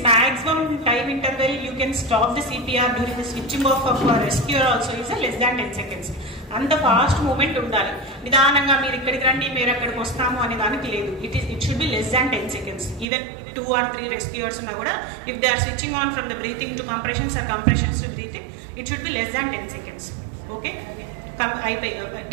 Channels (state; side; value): drops out; left; at 13.1 s